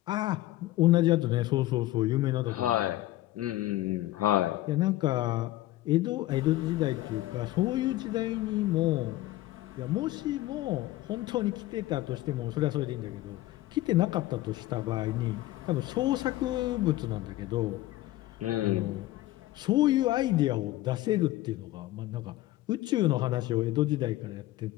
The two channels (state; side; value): quieter; right; 16.2 dB